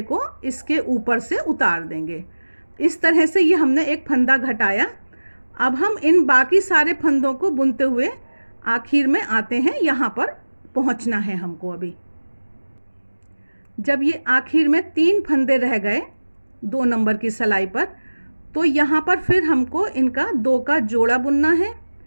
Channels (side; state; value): both; inverted; correlation -1.00